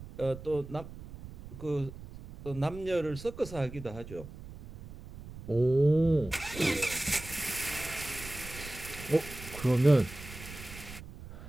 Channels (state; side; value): noise; right; rumble, 14 dB below the sound